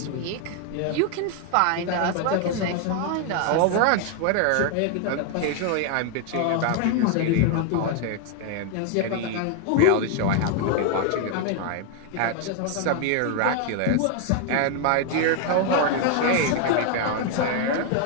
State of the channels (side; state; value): both; different; correlation 0.00